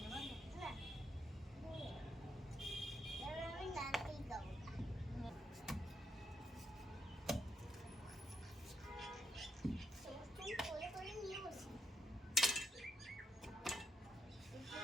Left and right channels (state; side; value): normal; both; correlation 0.77